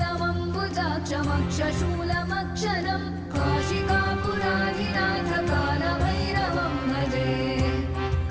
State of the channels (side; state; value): both; identical; correlation 1.00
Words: काशिकापुराधिनाथ कालभैरवं भजे।